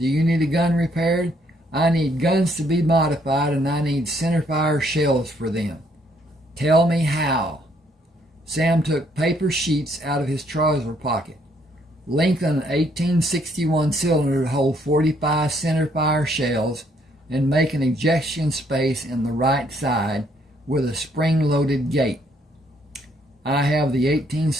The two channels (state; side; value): normal; both; correlation 0.69